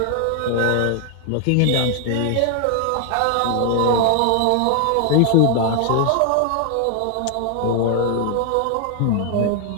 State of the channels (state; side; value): different; both; correlation 0.00